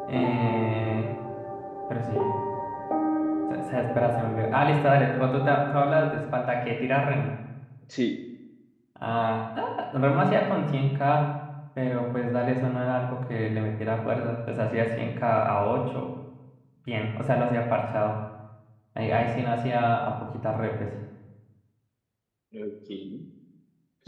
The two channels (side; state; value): both; identical; correlation 1.00